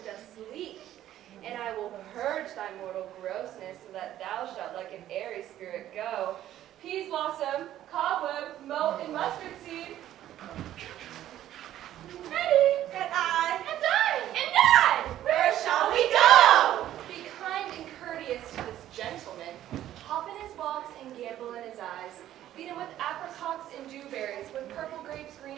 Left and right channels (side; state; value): left; quieter; 12.5 dB